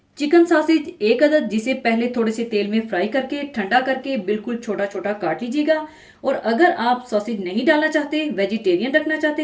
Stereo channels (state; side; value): identical; both; correlation 1.00